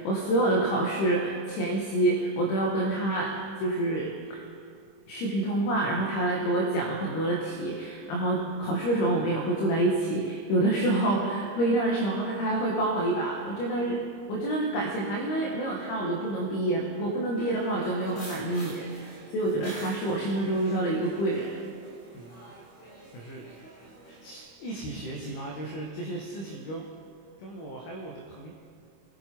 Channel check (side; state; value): right; late; 25 ms